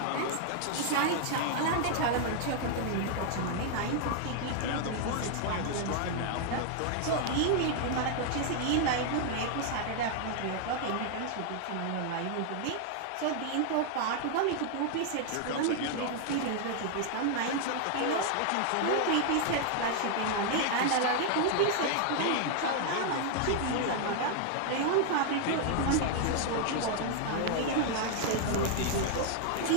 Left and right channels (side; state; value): both; different; correlation 0.00